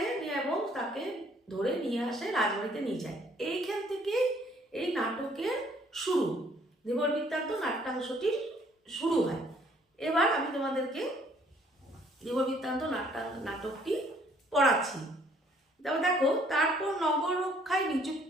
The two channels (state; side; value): normal; both; correlation 0.62